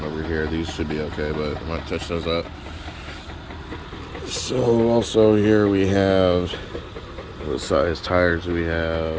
over here. These should be okay, but I might touch those up. So also here we have, what size tires do we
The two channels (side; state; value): both; identical; correlation 1.00